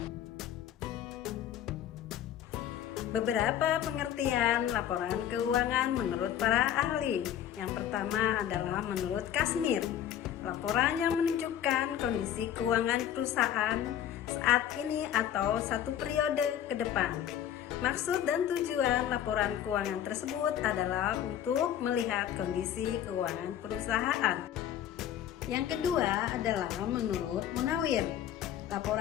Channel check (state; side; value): quieter; right; 10.5 dB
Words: Beberapa pengertian laporan keuangan menurut para ahli. Yang pertama adalah menurut Kasmir. Laporan yang menunjukkan kondisi keuangan perusahaan saat ini atau satu periode ke depan. Maksud dan tujuan laporan keuangan tersebut adalah untuk melihat kondisi keuangan perusahaan. Yang kedua adalah menurut Munawir.